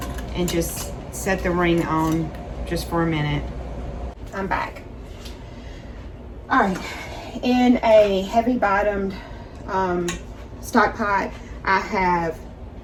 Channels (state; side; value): identical; both; correlation 1.00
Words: and just set the ring on just for a minute. I'm back. All right, in a heavy bottomed stock pot, I have